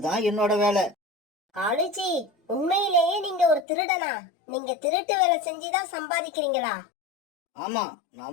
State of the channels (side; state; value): right; drops out; at 3.7 s